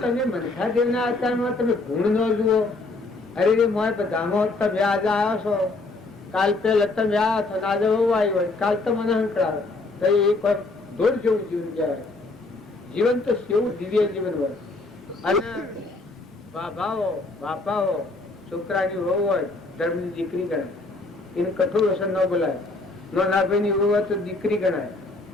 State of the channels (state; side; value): quieter; right; 3.3 dB